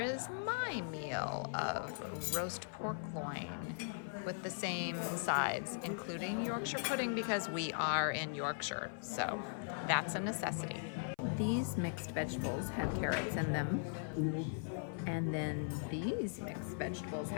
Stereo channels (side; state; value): right; silent; 51 dB below the other